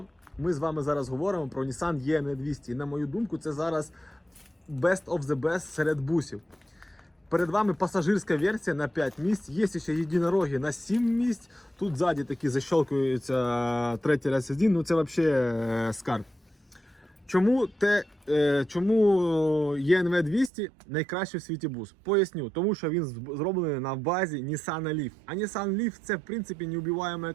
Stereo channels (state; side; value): drops out; left; at 20.5 s